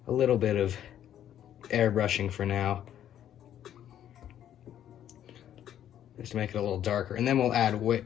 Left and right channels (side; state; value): right; quieter; 10.7 dB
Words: a little bit of airbrushing for now, just to make it a little darker, and then we'll add way